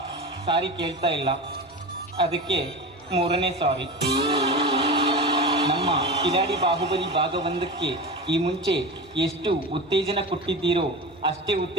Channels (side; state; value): both; normal; correlation 0.27